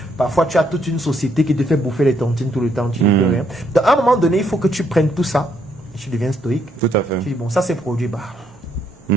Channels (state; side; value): normal; both; correlation 0.72